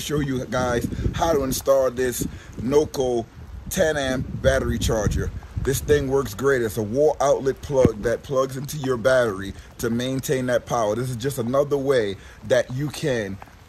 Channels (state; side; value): identical; both; correlation 1.00